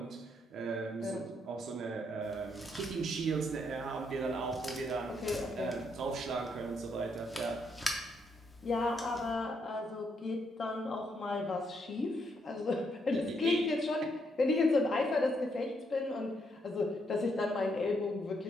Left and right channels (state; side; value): normal; both; correlation 0.76